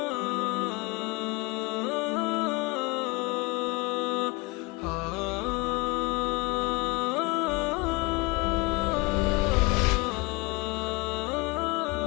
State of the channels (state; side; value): quieter; right; 25.6 dB